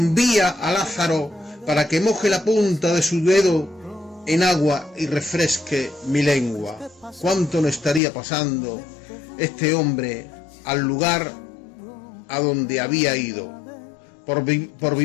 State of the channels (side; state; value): right; drops out; at 8.0 s